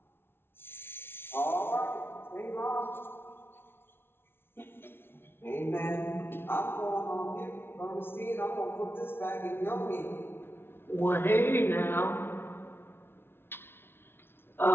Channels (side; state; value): right; late; 0.11 ms